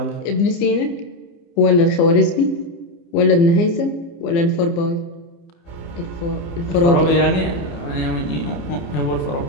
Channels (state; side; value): late; right; 29 ms